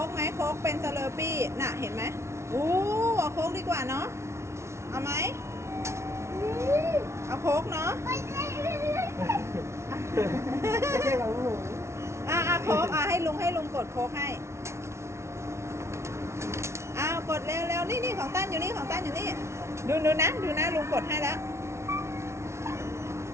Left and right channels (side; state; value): left; late; 0.13 ms